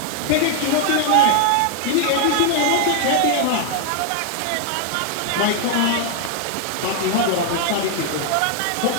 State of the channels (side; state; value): both; different; correlation 0.00